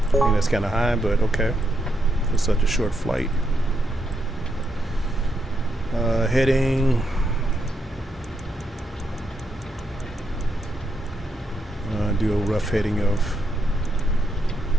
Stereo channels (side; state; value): both; normal; correlation 0.81